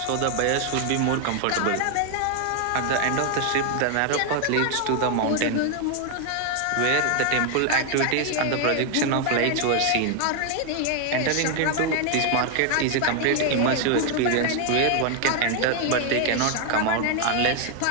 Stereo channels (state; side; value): different; both; correlation 0.00